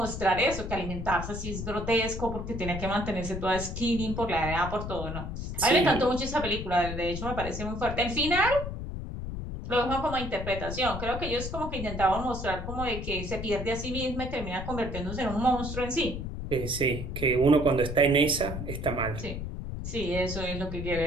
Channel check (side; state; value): left; noise; rumble, 6 dB below the sound